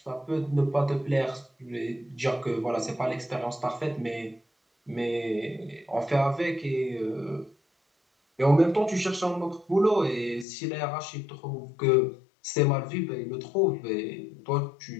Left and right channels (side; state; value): right; drops out; at 10.5 s